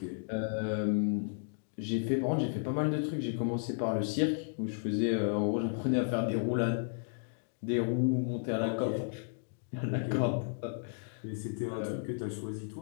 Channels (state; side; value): silent; right; digital silence